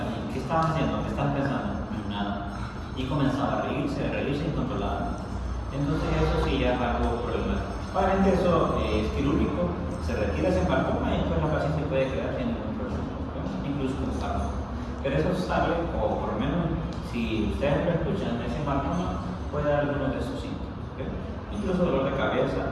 ¿qué estaban haciendo? ¿Qué estaban pensando? Nada. Y comenzaba a reírse incontrolable. Entonces eso sí ya es algo problemático. Obviamente eso es quirúrgico, se retira ese hematoma y después la paciente puede quedar sin ningún problema, ¿no? Incluso con fármaco. Pero eso sale, o por lo menos si ustedes lo escuchan, ese hematoma puede dar algunos de esos síntomas. ¿Okay? Incluso dolor de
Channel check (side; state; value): both; identical; correlation 1.00